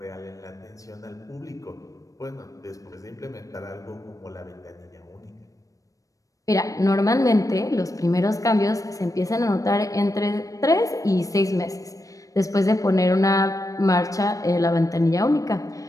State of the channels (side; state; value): right; late; 0.16 ms